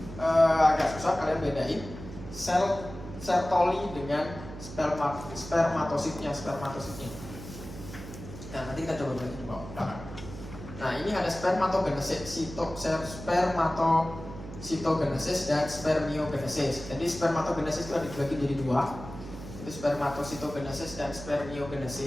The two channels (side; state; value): right; noise; hum, 12 dB below the sound